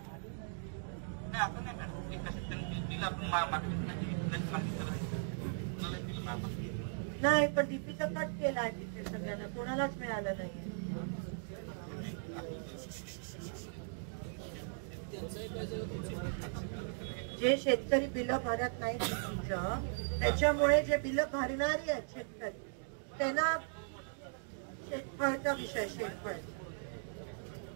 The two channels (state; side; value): silent; left; digital silence